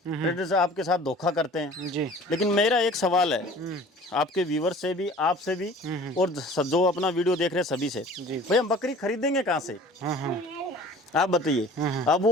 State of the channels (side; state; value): both; normal; correlation 0.46